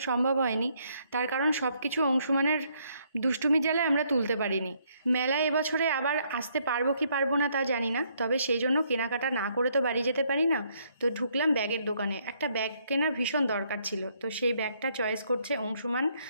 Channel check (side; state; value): both; inverted; correlation -0.70